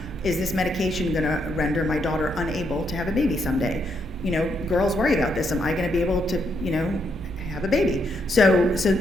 is this medication going to render my daughter unable to have a baby someday? Girls worry about this. Am I going to be able to, have a baby? So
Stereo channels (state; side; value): noise; right; rumble, 13 dB below the sound